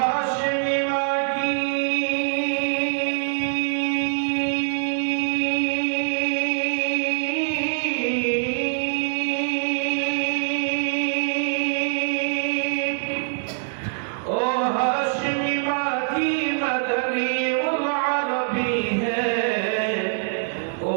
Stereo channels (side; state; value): left; silent; 63 dB below the other